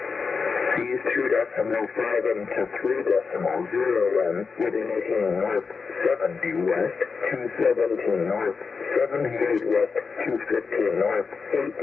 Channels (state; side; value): quieter; right; 5.0 dB